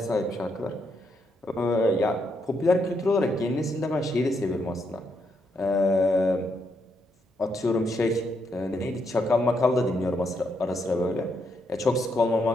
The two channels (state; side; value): normal; both; correlation 0.78